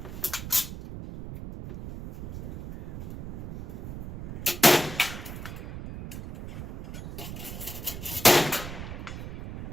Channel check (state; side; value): noise; right; rumble, 10 dB below the sound